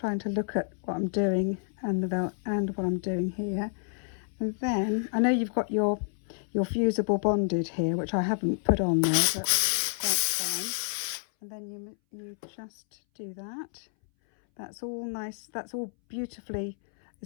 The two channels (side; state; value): right; silent; 58 dB below the other